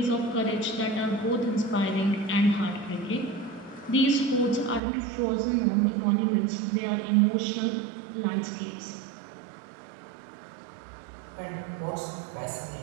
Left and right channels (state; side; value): drops out; left; at 4.8 s